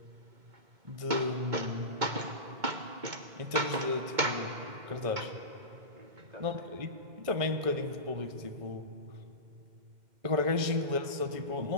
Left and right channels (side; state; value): left; late; 2.2 ms